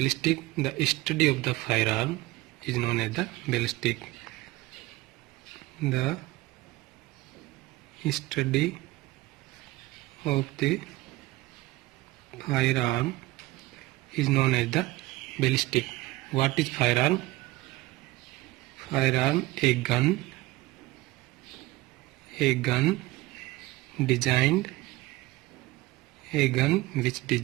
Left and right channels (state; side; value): quieter; left; 19.1 dB